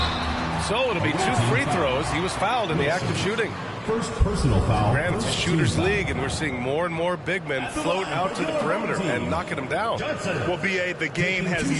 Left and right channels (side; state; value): both; identical; correlation 1.00